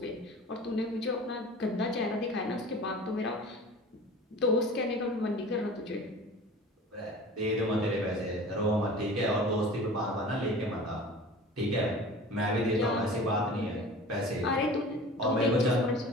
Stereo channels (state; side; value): normal; both; correlation 0.40